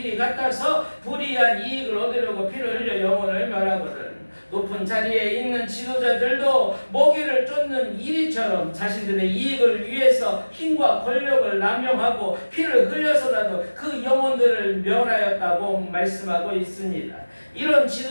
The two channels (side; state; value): both; inverted; correlation -1.00